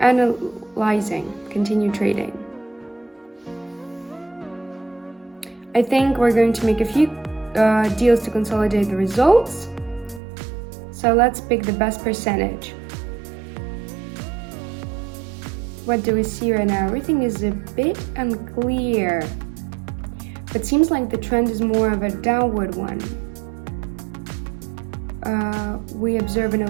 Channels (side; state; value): left; drops out; at 10.2 s